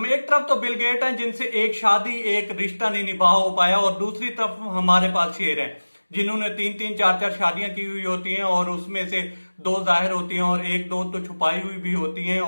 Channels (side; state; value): both; inverted; correlation -1.00